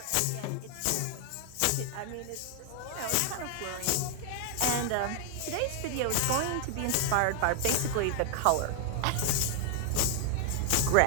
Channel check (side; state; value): both; different; correlation 0.00